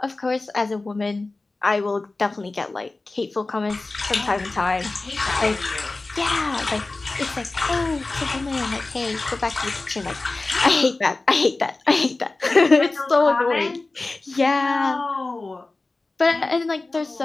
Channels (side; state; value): right; quieter; 3.3 dB